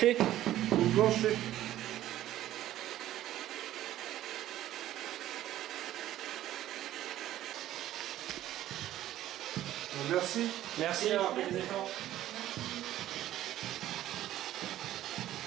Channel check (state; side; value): quieter; left; 13.4 dB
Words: Ou le plancher? Merci. Merci d'avoir fait des efforts.